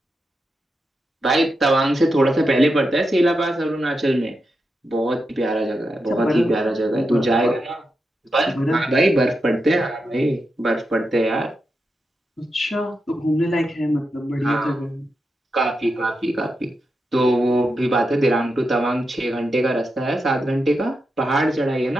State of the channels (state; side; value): normal; both; correlation 0.87